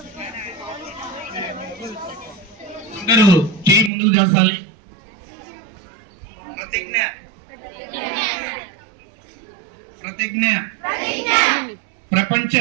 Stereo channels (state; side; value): drops out; left; at 3.9 s